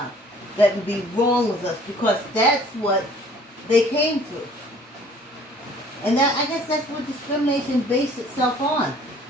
that would be wrong with us because that's what they came through. And that, I guess that's what discrimination based itself on.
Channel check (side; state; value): both; normal; correlation 0.54